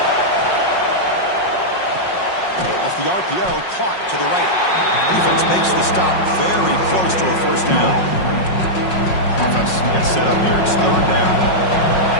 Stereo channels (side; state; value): right; late; 5.5 ms